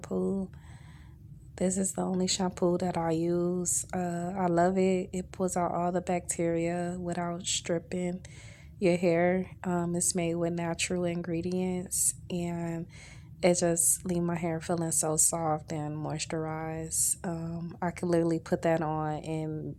This is the only shampoo that I use. I love it. It pulls out all the bacteria without stripping. your hair. It's made with natural ingredients, and it just leave my hair feeling so soft and moisturized. I could literally put that on and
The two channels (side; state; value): both; identical; correlation 1.00